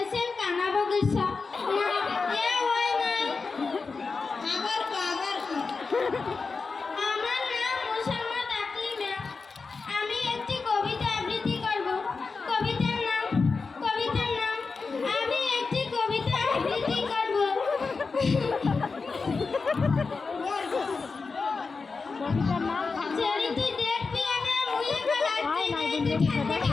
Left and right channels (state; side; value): quieter; right; 4.5 dB